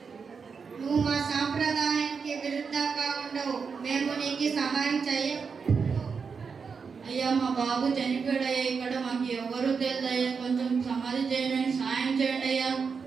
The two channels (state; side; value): quieter; left; 5.6 dB